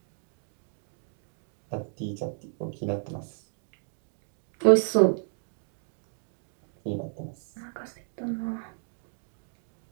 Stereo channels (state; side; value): silent; left; 56 dB below the other